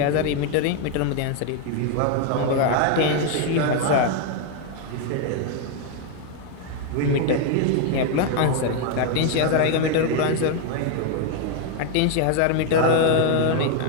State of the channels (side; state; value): both; different; correlation 0.01